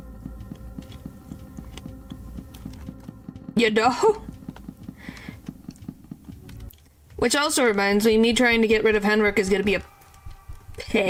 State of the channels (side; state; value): both; identical; correlation 1.00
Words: You know? Which also reminds me trying to get rid of Henrik is gonna be a